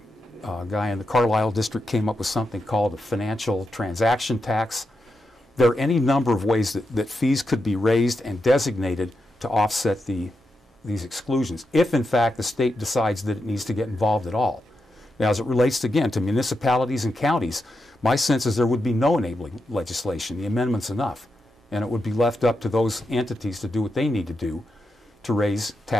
guy in the Carlisle district came up with something called a financial transaction tax. There are any number of ways that fees could be raised and designated to offset these exclusions, if in fact the state decides that it needs to get involved at all. Now, as it relates, again, to municipalities and counties, my sense is there would be no enabling legislation. The amendment's enough, and it would be left up to those entities to do what they need to do to raise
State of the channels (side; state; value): both; normal; correlation 0.86